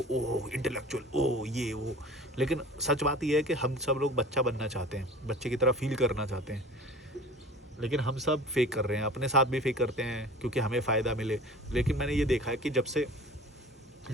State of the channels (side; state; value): both; normal; correlation 0.41